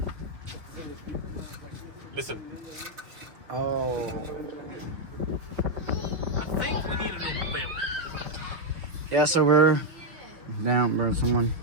Listen. Oh. I think we need a new belt. Yeah, so we're down, bro. Someone.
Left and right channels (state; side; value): late; left; 6.0 ms